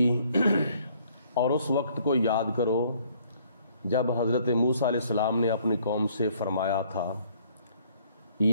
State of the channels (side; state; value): both; inverted; correlation -0.62